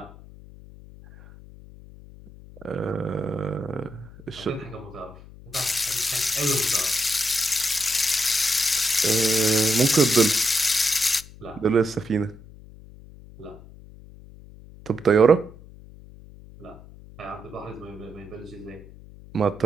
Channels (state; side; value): noise; left; hum, 19 dB below the sound